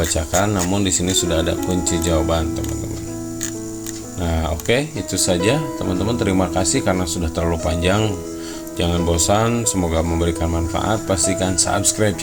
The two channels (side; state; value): both; identical; correlation 1.00